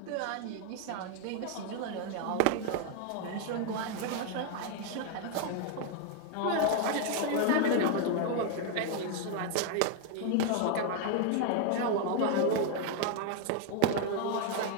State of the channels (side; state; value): both; different; correlation 0.00